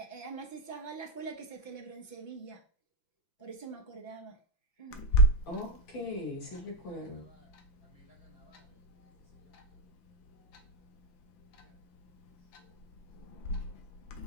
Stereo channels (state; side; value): late; right; 5.9 ms